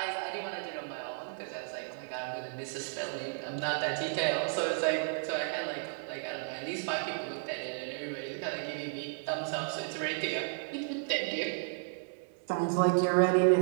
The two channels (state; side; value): silent; left; digital silence